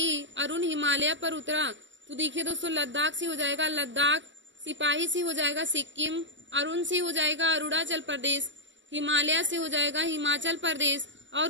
अरुण हिमालय पर उतरा। तो देखिए दोस्तों, लद्दाख से हो जाएगा लद्दाख, सिपाही से हो जाएगा सिक्किम, अरुण से हो जाएगा अरुणाचल प्रदेश, हिमालय से हो जाएगा हिमाचल प्रदेश,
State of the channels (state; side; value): late; left; 0.54 ms